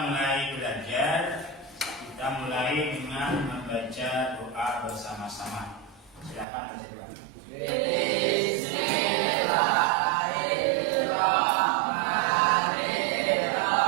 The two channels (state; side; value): drops out; left; at 6.5 s